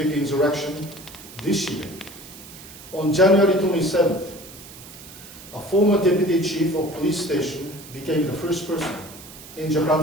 insurrection this year. On January 27th, a former deputy chief of police station became the first person in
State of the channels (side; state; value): right; noise; hiss, 17 dB below the sound